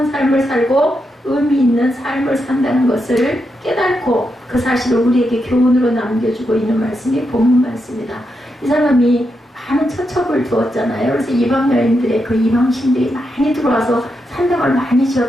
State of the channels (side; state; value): both; normal; correlation 0.84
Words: 삶을 살고 의미 있는 삶을 산다는 것을 깨닫고 그 사실을 우리에게 교훈으로 남겨주고 있는 말씀이 본문 말씀이다. 이 사람이 많은 처첩을 두었잖아요. 그래서 이방 여인들의 그 이방신들이 많이 들어와서 산당을 많이